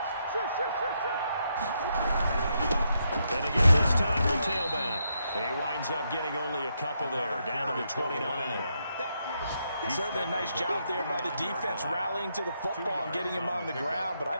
And again this time the tailback. He winds up getting only a couple there, down to the 29. Certainly a nice job there by the defense rallying to the football and getting him on the ground, but I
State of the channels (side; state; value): both; inverted; correlation -0.80